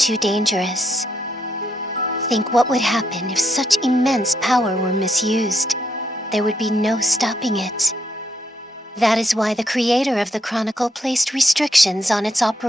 dangerous. Think what would happen if such immense power were misused. There would be no stopping it. That is why the creator of the Chronicle placed restrictions on its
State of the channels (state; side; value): normal; both; correlation 0.77